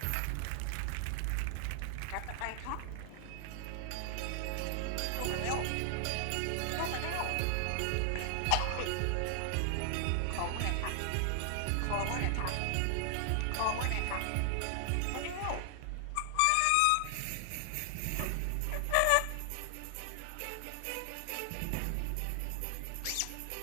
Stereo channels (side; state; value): both; different; correlation 0.00